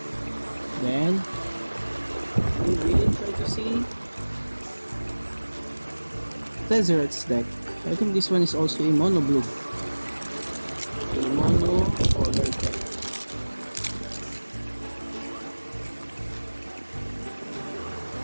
Then we will try to see Tezzeret's deck. I think this one is also a mono blue, a mono colored deck.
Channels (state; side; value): inverted; both; correlation -1.00